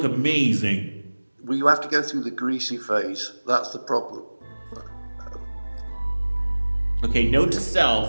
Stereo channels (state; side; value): inverted; both; correlation -1.00